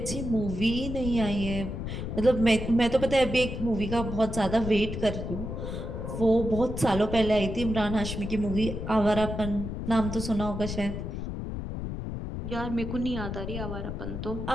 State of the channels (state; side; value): noise; left; rumble, 5 dB below the sound